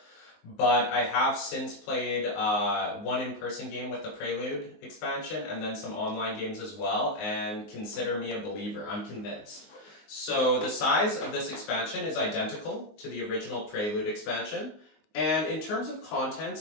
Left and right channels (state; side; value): late; right; 19 ms